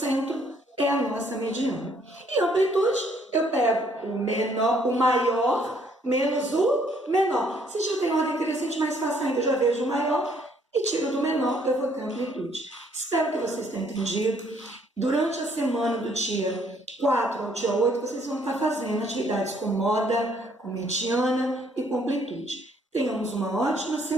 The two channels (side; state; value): both; normal; correlation 0.65